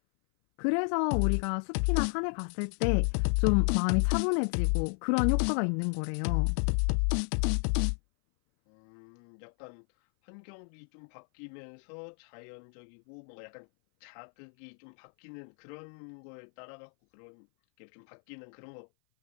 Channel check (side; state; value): right; silent; 57 dB below the other